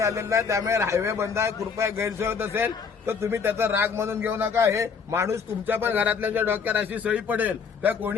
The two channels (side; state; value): right; quieter; 5.9 dB